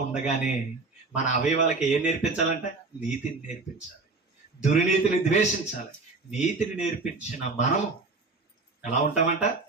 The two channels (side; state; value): left; quieter; 3.7 dB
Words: ఉండగానే మన అవయవాలకి ఏం నేర్పించాలంటే? నీతిని నేర్పించాలి, దుర్నీతిని ద్వేషించాలి. నీతిని నేర్పించిన మనము ఎలా ఉంటామంట?